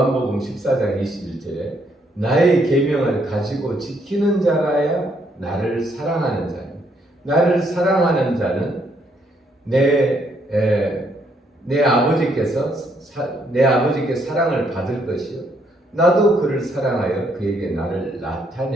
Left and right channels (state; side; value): normal; both; correlation 0.72